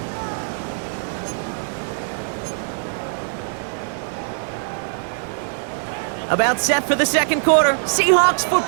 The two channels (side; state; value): left; silent; 64 dB below the other